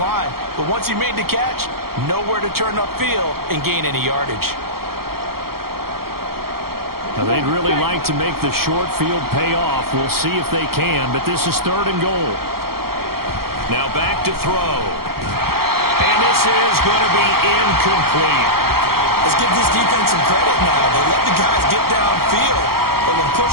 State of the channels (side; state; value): left; late; 0.94 ms